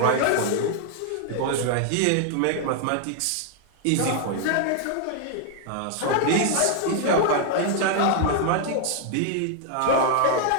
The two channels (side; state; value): both; different; correlation 0.00